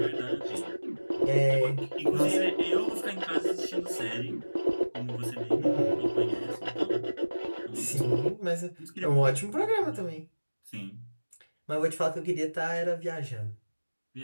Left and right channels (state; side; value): inverted; both; correlation -1.00